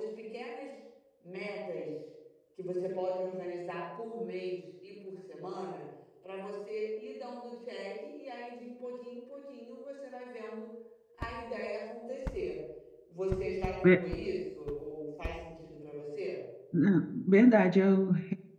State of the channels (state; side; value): identical; both; correlation 1.00